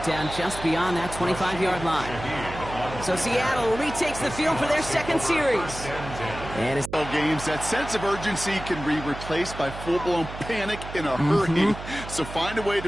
down just beyond that 25-yard line. So Seattle retakes the field for their 2nd series. And it's games, that sense of urgency can be replaced by full-blown panic in a hurry. So find a way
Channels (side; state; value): right; noise; hum, 11 dB below the sound